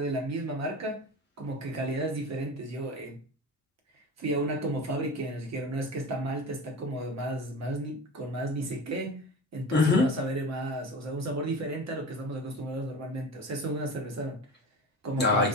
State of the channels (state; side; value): normal; both; correlation 0.31